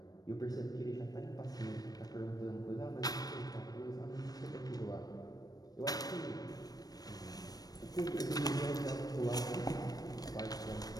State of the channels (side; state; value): right; late; 0.19 ms